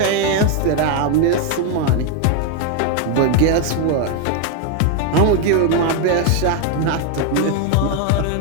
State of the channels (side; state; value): both; different; correlation 0.01